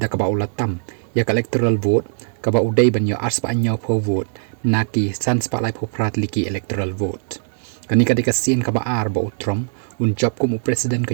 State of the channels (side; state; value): left; silent; 59 dB below the other